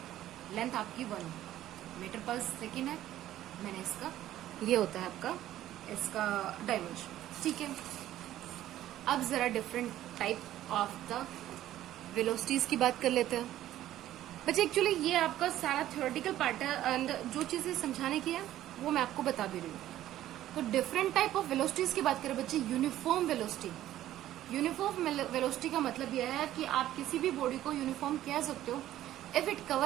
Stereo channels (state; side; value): quieter; left; 13.2 dB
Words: लेंथ आपकी 1 मीटर पर सेकेंड है, मैंने इसका ये होता है आपका इसका डायमेंशन। ठीक है, अब जरा different type of the velocities की बात कर लेते हैं बच्चे। एक्चुअली ये आपका सारा थ्योरेटिकल पार्ट है एंड जो चीजें समझाने की है वो मैं आपको बता भी रही हूँ। तो डिफरेंट टाइप ऑफ वेलोसिटीज की बात करें बच्चे, यूनिफॉर्म वेलोसिटी। यूनिफॉर्म वेलोसिटी का मतलब यह है कि आप किसी भी बॉडी को यूनिफॉर्म कह सकते हो if it